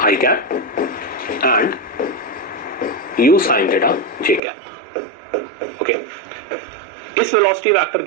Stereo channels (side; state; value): left; drops out; at 4.4 s